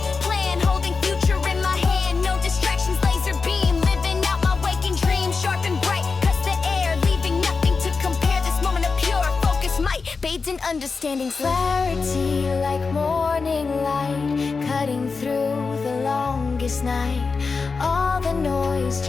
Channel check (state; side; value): quieter; right; 4.6 dB